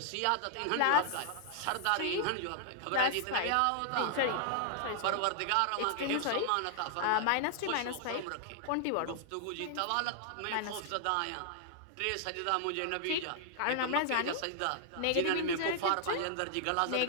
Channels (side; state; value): both; different; correlation -0.01